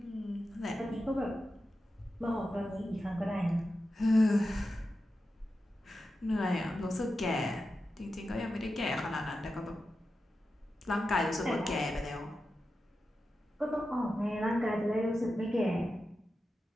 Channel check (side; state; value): both; normal; correlation 0.91